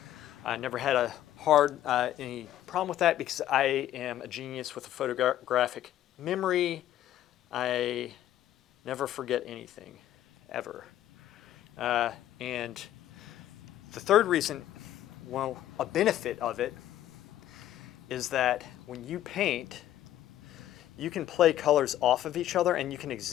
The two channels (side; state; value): right; quieter; 12.5 dB